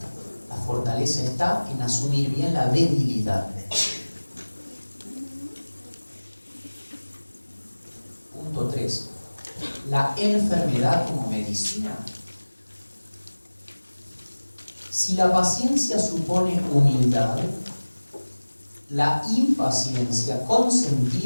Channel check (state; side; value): inverted; both; correlation -1.00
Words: La fortaleza está en asumir bien la debilidad. Punto 3. La enfermedad como medicina. Si la paciencia supone humildad, la impaciencia